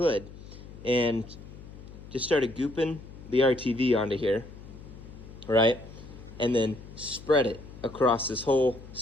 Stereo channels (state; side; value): noise; left; hum, 16 dB below the sound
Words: and just started gooping the RTV onto here, right? And then spread it across this whole